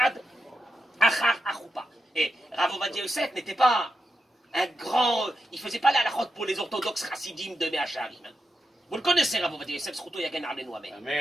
achar achoupa. Et Rav Ovadia Yosef n'était pas un grand... Il ne faisait pas la halachot pour les orthodoxes chassidim de Mea Shearim. Vous le connaissez, Rav Ovadia Yosef, Zchuto Yagen Alenu Amen.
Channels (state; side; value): normal; both; correlation 0.87